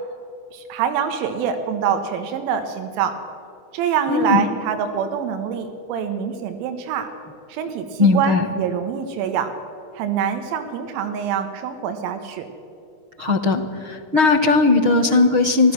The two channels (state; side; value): late; left; 6.4 ms